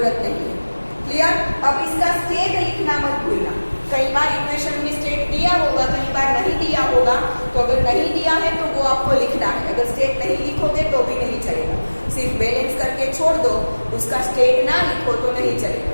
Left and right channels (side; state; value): both; inverted; correlation -1.00